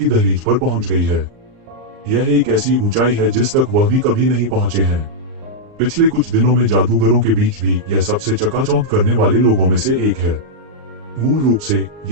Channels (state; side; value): late; left; 39 ms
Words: दहलीज पर पहुंच गई है। यह एक ऐसी ऊंचाई है जिस तक वह भी कभी नहीं पहुंचे हैं। पिछले कुछ दिनों में जादूगरों के बीच भी यह सबसे चकाचौंध करने वाले लोगों में से एक है। मूल रूप से